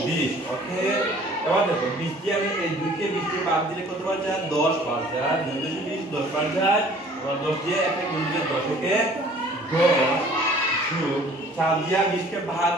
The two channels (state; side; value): normal; both; correlation 0.52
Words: 20। ওকে, এবার দেখো 20 দিয়ে আমি এই 2 কে 20 দিয়ে বাদ দিলে কত বার যায়, 10 বার যায়। 2 × 20 10 বার যায়। এবার 10 দিয়ে একটা গুণ দিলে 10 থেকে 10 যোগ 4 দিয়ে 20 কে ভাগ